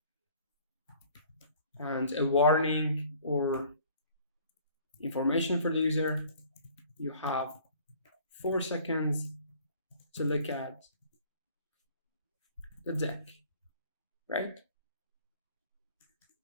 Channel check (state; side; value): inverted; both; correlation -0.53